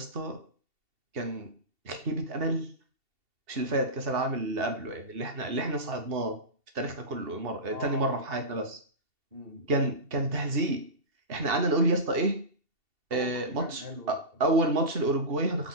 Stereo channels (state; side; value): late; left; 2.7 ms